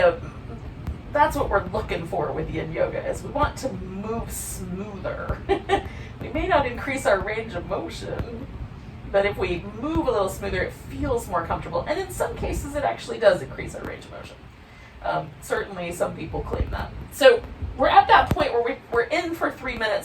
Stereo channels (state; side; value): identical; both; correlation 1.00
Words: what we're looking for with yin yoga, is we want to move smoother. We may not increase our range of motion, but if we move a little smoother, it feels more comfortable. And in some cases, it actually does increase our range of motion. Certainly some people claim that. So we're at that point where we're in for 3